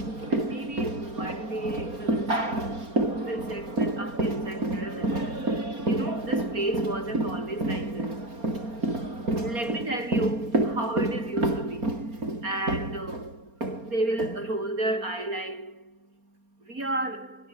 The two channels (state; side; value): late; left; 4.3 ms